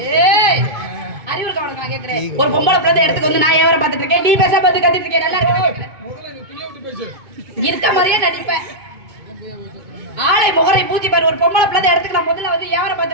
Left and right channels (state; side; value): late; left; 2.2 ms